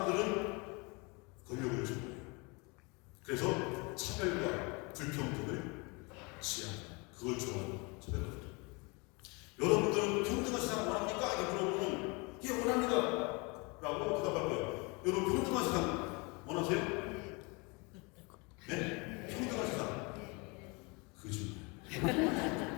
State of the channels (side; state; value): right; quieter; 29.0 dB